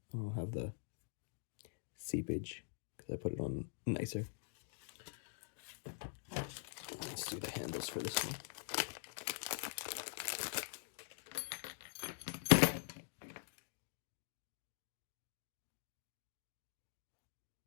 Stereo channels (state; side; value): silent; right; digital silence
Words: I'll have the seepage because I put it on nicer. Let's do the handles for this one.